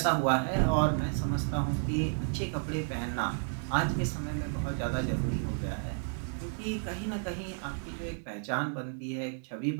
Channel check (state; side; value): silent; left; digital silence